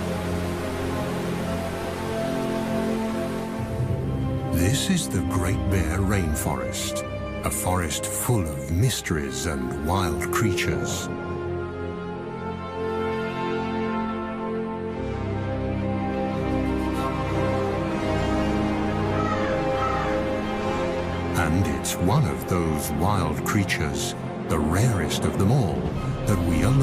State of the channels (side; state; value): both; identical; correlation 1.00